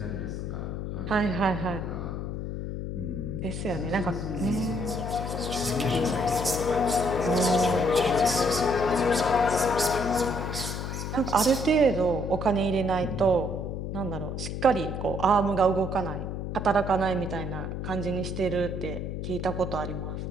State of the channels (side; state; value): left; noise; hum, 4 dB below the sound